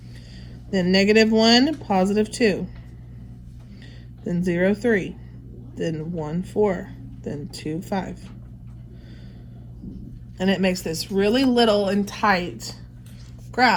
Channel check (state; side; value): identical; both; correlation 1.00